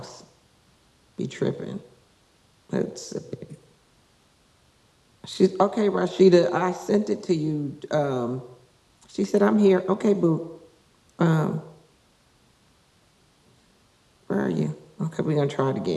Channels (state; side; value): identical; both; correlation 1.00